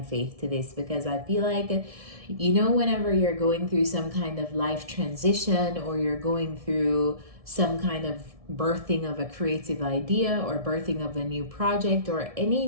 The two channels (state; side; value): late; left; 1.7 ms